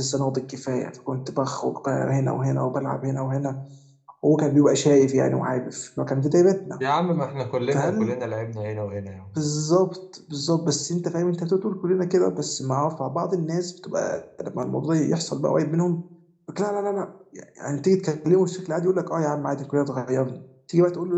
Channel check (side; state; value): both; identical; correlation 1.00